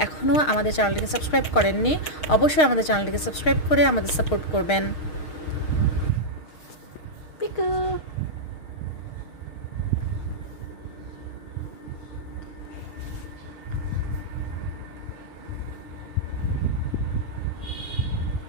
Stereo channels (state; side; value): late; right; 6.4 ms